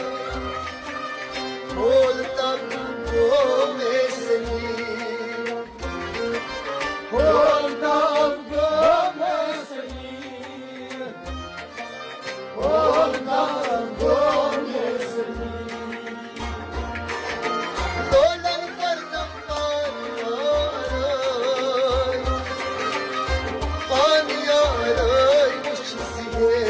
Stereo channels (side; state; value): both; identical; correlation 1.00